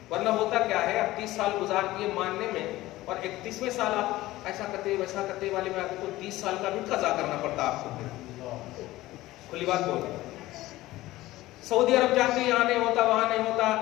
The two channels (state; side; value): quieter; right; 17.2 dB